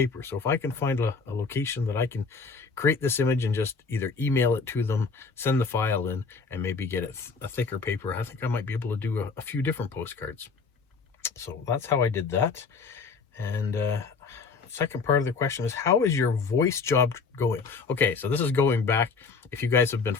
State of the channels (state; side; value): quieter; right; 4.9 dB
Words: So if I can find a location that I can create this image and just either email it to them, send the file in, and maybe get it a thicker paper, I think I might be able to do a few different postcards. So that's how I did that. And second part of the question is, how is your voice job going? Okay, so this is going back. If you guys have been